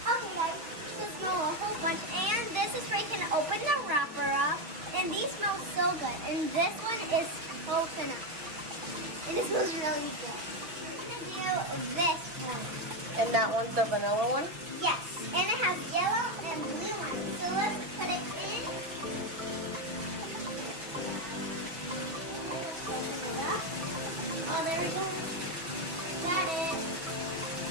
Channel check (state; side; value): late; left; 5.7 ms